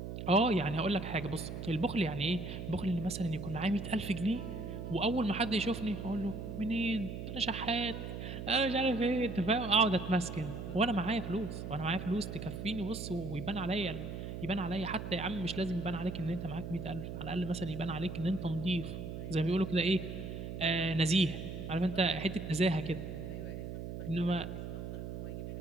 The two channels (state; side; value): noise; right; hum, 7 dB below the sound